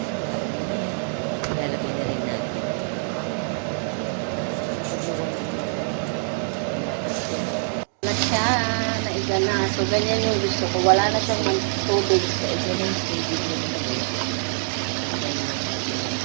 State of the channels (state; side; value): silent; left; 62 dB below the other